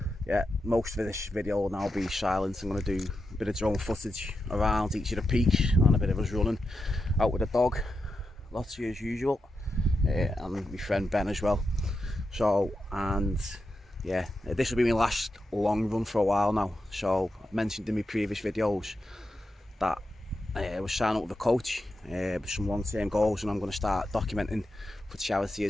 Yeah, most of this video will now be silent. I'm going to do a bit of drone footage around each of the peaks and a bit of us running out with the dog, lots of you as usual, and my friend Ben as well. So, and yeah, this will be my last long run for a while now. So I mentioned in my previous videos that I was signing up with a coach with some long-term goals, and I'm going to start documenting for charity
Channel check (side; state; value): both; normal; correlation 0.88